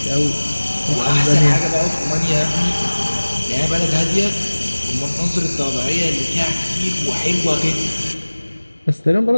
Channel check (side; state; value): both; inverted; correlation -1.00